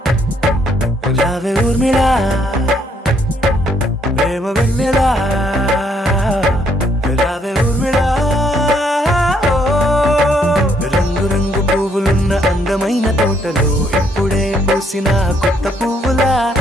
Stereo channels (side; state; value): both; normal; correlation 0.69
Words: రావే ఊర్మిళా, ప్రేమ వెన్నెలా రావే ఊర్మిళా. రంగు రంగు పువ్వులున్న అందమైన తోటలో ఇప్పుడే పూసిన కొత్త పువ్వులా,